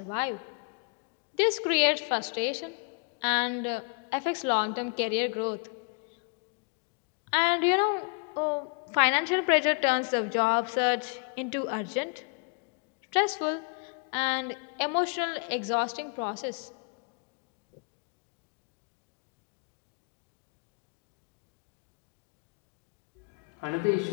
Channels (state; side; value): quieter; right; 36.2 dB